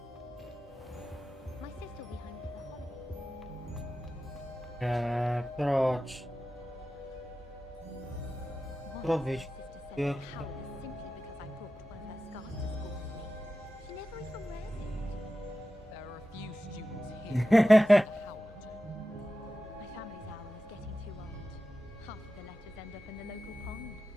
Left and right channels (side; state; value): both; normal; correlation 0.93